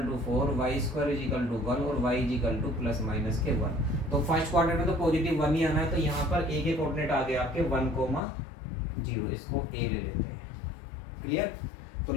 to 4, y square is equal to 1 और y is equal to plus minus के 1। तो फर्स्ट क्वाड्रेंट में तो पॉजिटिव 1 ही आना है, तो यहाँ पर a के कोऑर्डिनेट आ गए आपके 1,0, इसको a ले लेते हैं। क्लियर? तो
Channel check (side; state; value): right; drops out; at 8.2 s